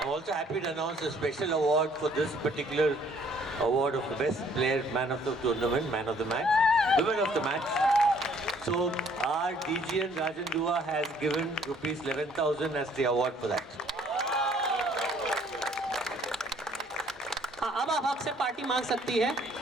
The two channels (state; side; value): normal; both; correlation 0.61